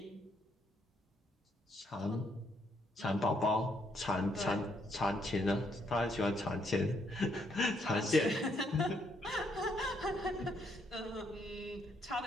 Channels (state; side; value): normal; both; correlation 0.73